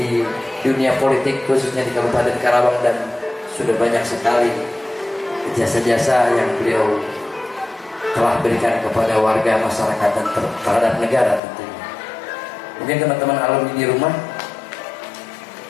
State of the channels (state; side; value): drops out; right; at 11.4 s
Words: dunia politik, khususnya di Kabupaten Karawang, dan sudah banyak sekali jasa-jasa yang beliau telah berikan kepada warga masyarakat dan terhadap negara tentunya. Mungkin teman-teman alumni di rumah